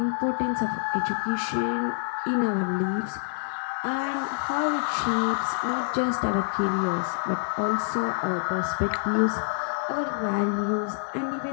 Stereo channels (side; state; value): right; silent; digital silence